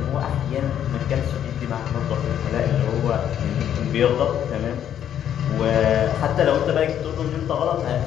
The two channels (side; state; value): right; quieter; 10.0 dB